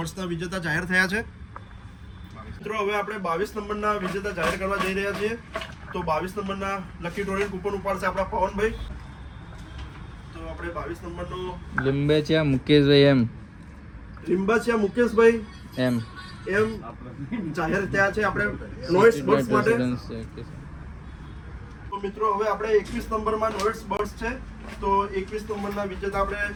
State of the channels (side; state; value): both; identical; correlation 1.00